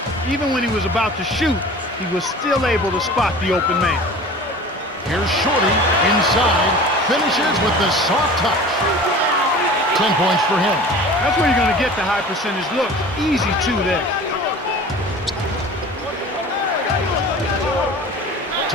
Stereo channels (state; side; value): normal; both; correlation 0.40